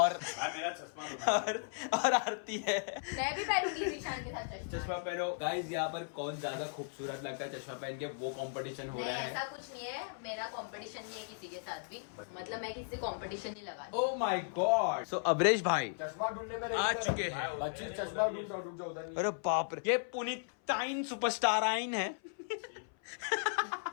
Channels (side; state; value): right; silent; 54 dB below the other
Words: आरती है। मैं भी पहनूंगी जीशान के साथ चश्मा पहनो गाइस। यहाँ पर कौन ज्यादा खूबसूरत लगता है चश्मा पहन के, वो कंपटीशन हो रहा है। ऐसा कुछ नहीं है, मेरा कंपटीशन नहीं है किसी के साथ भी, मतलब मैं किसी कंपटीशन नहीं लगा। Oh my god. So Amrish भाई चश्मा ढूंढने में आ चुके हैं। बच्चे चश्मा ढूंढ रुक जाओ उधर नहीं। अरे बाप रे, ये पुनीताइन सुपरस्टार आइन है।